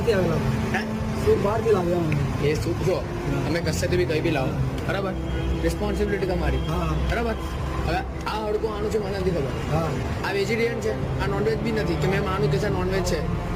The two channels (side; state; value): both; identical; correlation 1.00